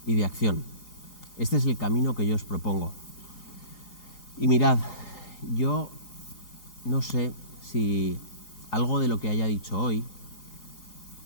y de acción. Este es el camino que yo os propongo. Y mirad, yo no sé si algo de lo que haya dicho hoy,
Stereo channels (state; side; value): late; right; 4.8 ms